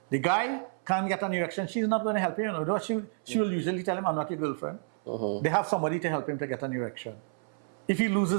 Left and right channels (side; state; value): left; silent; 58 dB below the other